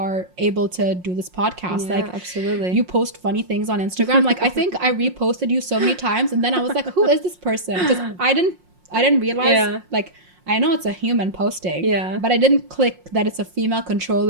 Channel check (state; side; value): late; left; 5.6 ms